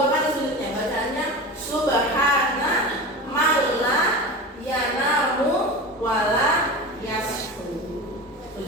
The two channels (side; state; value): both; normal; correlation 0.29